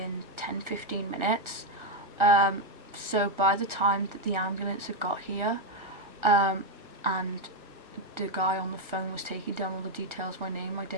10-15 minutes. So by the time that the ambulance had got here, and the guy on the phone was taking down all the details, my name, my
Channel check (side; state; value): left; late; 1.4 ms